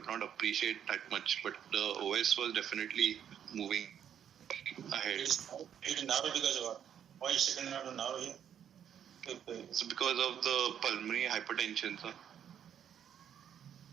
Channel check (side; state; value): left; quieter; 9.1 dB